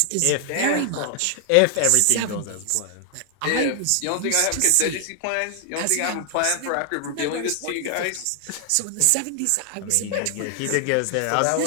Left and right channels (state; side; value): different; both; correlation 0.00